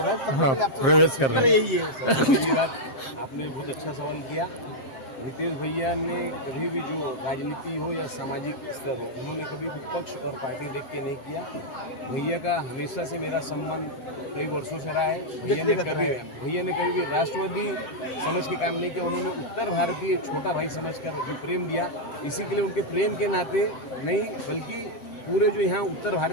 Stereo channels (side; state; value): right; late; 7.6 ms